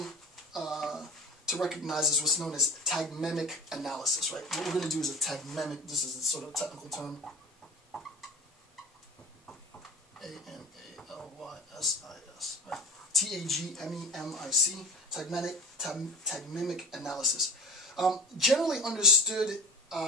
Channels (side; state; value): both; normal; correlation 0.37